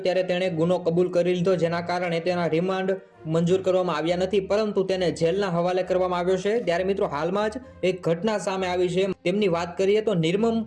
ત્યારે તેણે ગુનો કબૂલ કરી લીધો, જેના કારણે તેના રિમાન્ડ મંજૂર કરવામાં આવ્યા નથી, પરંતુ તેને જેલના હવાલે કરવામાં આવ્યો છે। ત્યારે મિત્રો, હાલમાં જ એક ઘટના સામે આવી છે। તેમની વાત કરીએ તો નિર્મમ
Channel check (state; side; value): identical; both; correlation 1.00